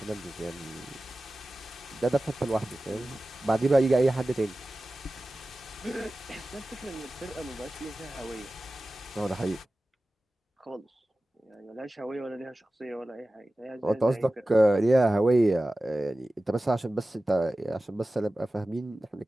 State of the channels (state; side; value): normal; both; correlation 0.96